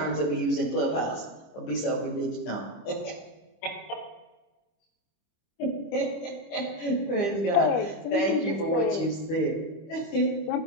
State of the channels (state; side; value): late; right; 25 ms